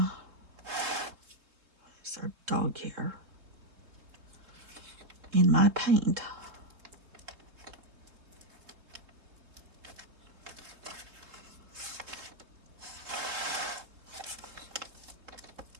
There's our dog here in my paint.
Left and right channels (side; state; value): left; late; 3.6 ms